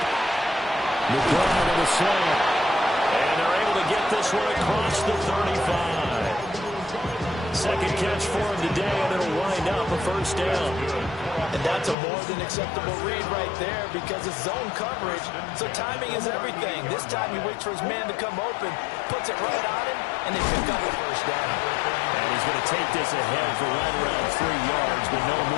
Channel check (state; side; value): drops out; right; at 12.0 s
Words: McBride on the slam. And they're able to get this one across the 35. Second catch for him today, and it'll wind up a 1st down. And that's a more than acceptable read right there because it's zone coverage, so timing is everything. This time he waits for his man to come open, puts it right on him, and they pick up the 1st down. And he's going to take this ahead for right around 3 yards, but no